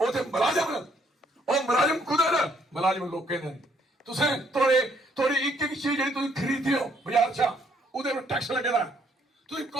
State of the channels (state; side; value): normal; both; correlation 0.68